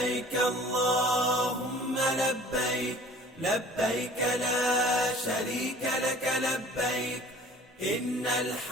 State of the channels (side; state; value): both; normal; correlation 0.49